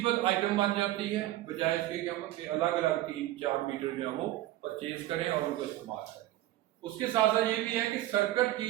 आइटम बन जाती है, बजाय इसके कि हम अलग अलग 3-4 मीटर जो है वो परचेज करें और उनको इस्तेमाल करें। उसके साथ साथ ये भी है कि सर्किट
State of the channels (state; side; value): quieter; left; 15.3 dB